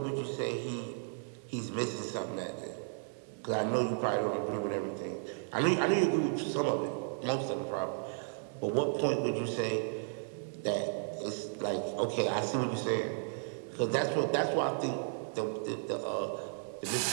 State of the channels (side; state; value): left; silent; digital silence